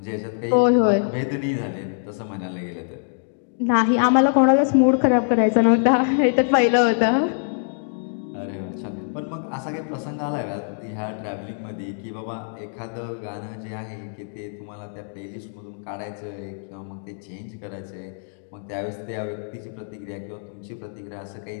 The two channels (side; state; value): right; silent; digital silence